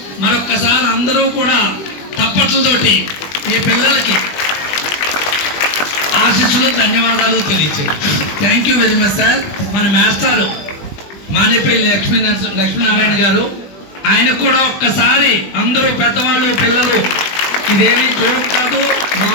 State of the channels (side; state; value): right; late; 20 ms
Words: మరొక్కసారి అందరూ కూడా తప్పట్లతోటి ఈ పిల్లలకి ఆశీస్సులు, ధన్యవాదాలు తెలియజేయండి. Thank you very much sir. మన మాస్టారు మానేపల్లి లక్ష్మీనారాయణ గారు, ఆయనకు కూడా ఒక్కసారి అందరూ పెద్దవాళ్ళు పిల్లలు, ఇదేమీ జోక్ కాదు,